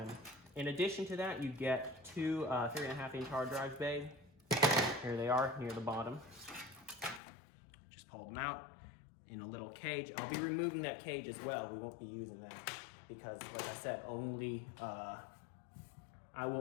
in addition to that, you get two 3.5-inch hard drive bays. Here they are, near the bottom. Just pull them out in a little cage. I'll be removing that cage as well. We won't be using them because, like I said, I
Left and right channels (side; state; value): right; drops out; at 7.2 s